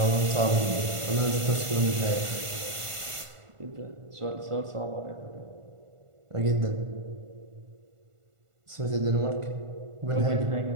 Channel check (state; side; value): late; left; 1.5 ms